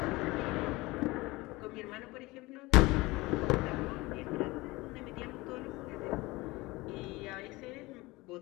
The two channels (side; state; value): right; quieter; 21.5 dB